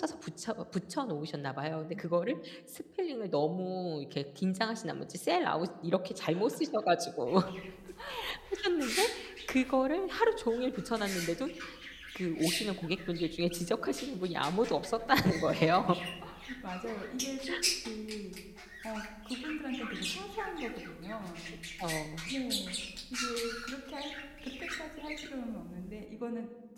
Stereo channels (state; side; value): identical; both; correlation 1.00